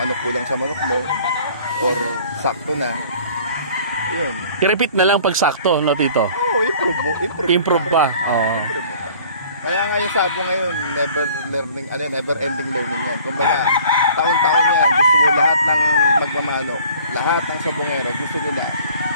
kulang sa manok mo or sakto na. Yun. I-repeat na lang pag sakto, no, Tito? Improve pa. Improve pa. Kaya nga yung sabo ngayon, never ending learning yan. Kumbaga, taon-taon yan, gusto mo lahat ng magmamano, lahat ng sabongero, gusto nila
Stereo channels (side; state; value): both; inverted; correlation -0.51